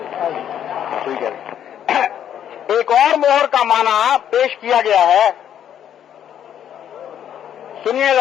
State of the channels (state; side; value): quieter; right; 9.8 dB